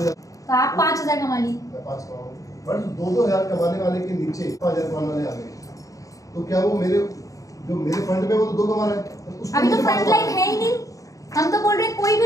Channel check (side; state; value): right; late; 0.16 ms